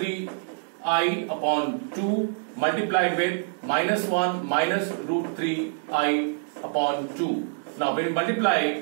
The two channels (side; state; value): left; silent; digital silence